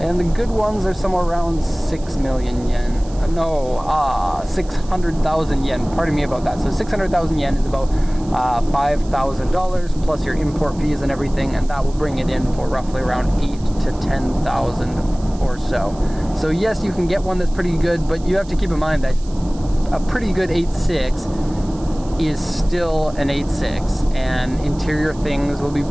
the good ones are somewhere around 6 million yen. 600,000 yen. Pardon me about that. So 600,000 yen is about $5,000 plus your import fees and everything, and that will bring it in for roughly around 8,000 to 10,000 or so. So yes, you can get one that's pretty good, but you have to keep in mind that a pretty good 86 is still an 86, and interior things will be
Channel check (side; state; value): right; noise; hiss, 23 dB below the sound